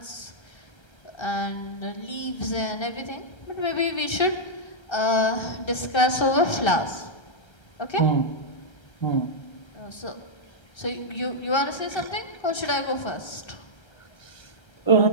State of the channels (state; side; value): late; right; 1.3 ms